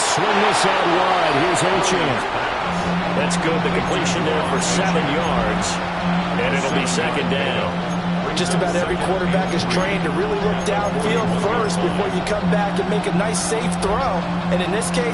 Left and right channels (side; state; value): both; identical; correlation 1.00